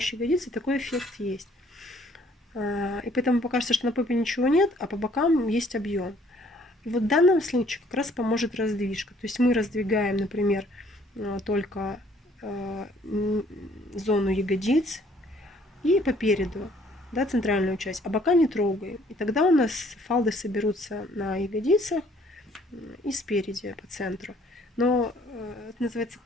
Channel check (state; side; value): normal; both; correlation 0.61